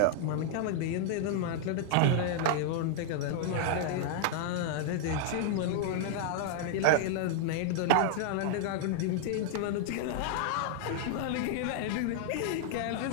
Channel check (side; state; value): both; different; correlation -0.01